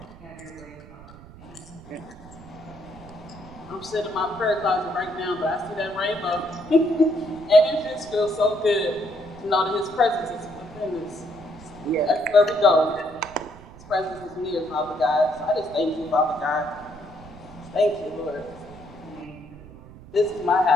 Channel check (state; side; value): noise; right; rumble, 19 dB below the sound